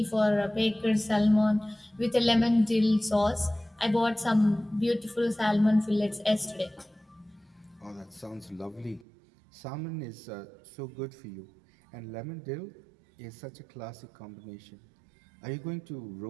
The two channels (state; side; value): drops out; left; at 9.1 s